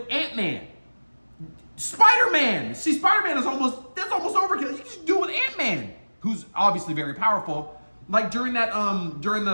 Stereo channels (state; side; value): inverted; both; correlation -1.00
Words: Ant-Man, Spider-Man. See, Spider-Man that's almost overkill. You just do it with Ant-Man, who's obviously very powerful. Like during